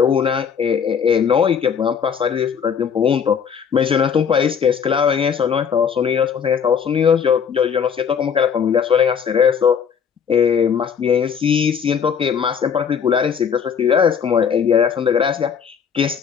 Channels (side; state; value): right; quieter; 7.2 dB